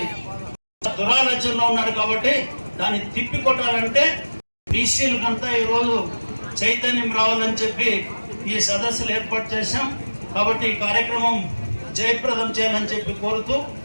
దురాలోచనలో ఉన్నాడు. కాబట్టి దాన్ని తిప్పికొట్టాలంటే బీసీలకంతా ఈరోజు చైతన్యం రావాలని చెప్పి ఈ సదస్సులు ఏర్పాటు చేశాం. కాబట్టి ఈ కార్యక్రమం జయప్రదం చేయాలని చెప్పి కోరుతూ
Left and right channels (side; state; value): both; inverted; correlation -1.00